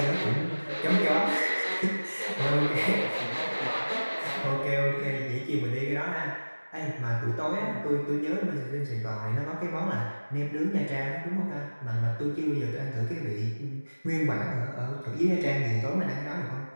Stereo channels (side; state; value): both; inverted; correlation -1.00